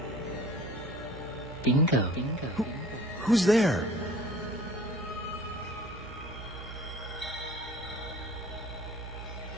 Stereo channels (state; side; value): normal; both; correlation 0.47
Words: Bingo. Who's there?